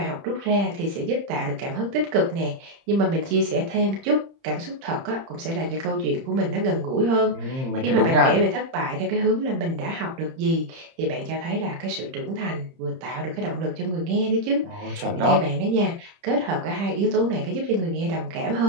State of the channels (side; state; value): left; late; 30 ms